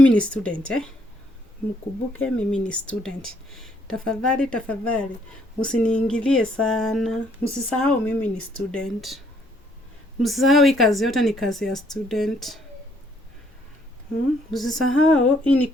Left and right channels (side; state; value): both; normal; correlation 0.67